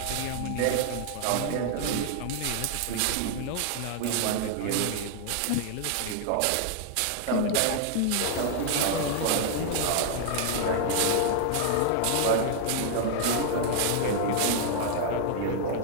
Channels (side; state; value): both; different; correlation 0.00